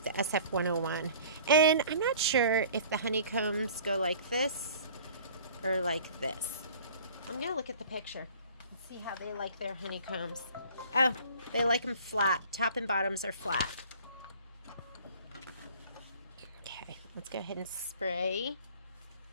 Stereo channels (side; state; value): both; inverted; correlation -0.48